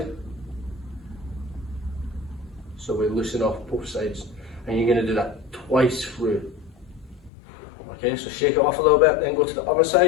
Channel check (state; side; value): drops out; right; at 7.3 s